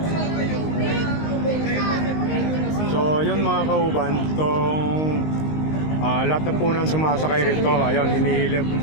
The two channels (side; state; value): right; late; 19 ms